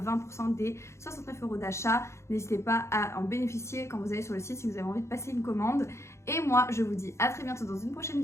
des 69 € d'achat. N'hésitez pas à en bénéficier quand vous allez sur le site si vous avez envie de passer une commande. Et moi, je vous dis à très bientôt dans une prochaine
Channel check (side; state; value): right; late; 0.13 ms